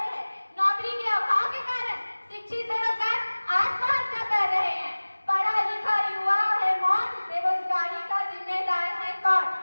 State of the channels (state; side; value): inverted; both; correlation -1.00